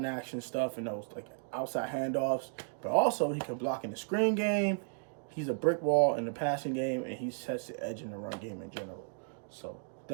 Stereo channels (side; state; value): left; silent; digital silence